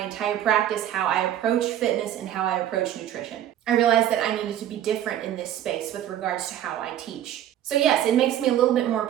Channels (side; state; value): left; quieter; 11.3 dB